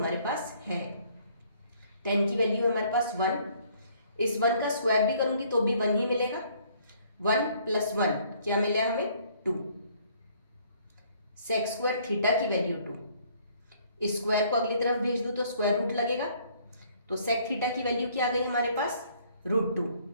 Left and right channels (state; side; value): inverted; both; correlation -0.62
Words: पास है। टेन की वैल्यू हमारे पास 1, इस 1 का स्क्वायर भी करूंगी तो भी 1 ही मिलेगा। 1 प्लस 1 क्या मिला हमें, 2। सेक स्क्वायर थीटा की वैल्यू 2, इस स्क्वायर को अगली तरफ भेज दूं तो स्क्वायर रूट लगेगा, तो सेक थीटा की वैल्यू क्या आ गई हमारे पास, √2।